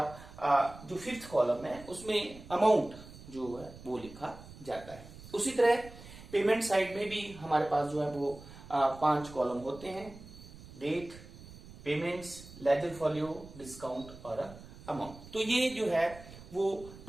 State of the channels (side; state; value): right; noise; rumble, 17 dB below the sound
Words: जो फिफ्थ कॉलम है उसमें अमाउंट जो है वो लिखा जाता है। उसी तरह पेमेंट साइड में भी हमारे पास जो है वो 5 कॉलम होते हैं, डेट, पेमेंट्स, लेजर फॉल्यू, डिस्काउंट और अमाउंट। तो ये जो है वो